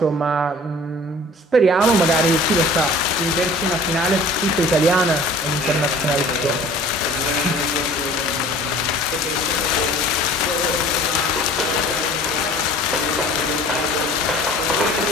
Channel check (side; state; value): both; normal; correlation 0.47